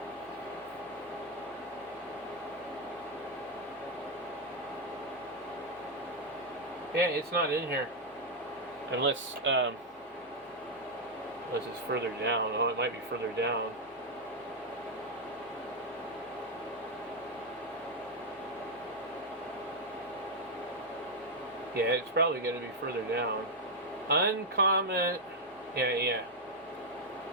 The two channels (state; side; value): normal; both; correlation 0.00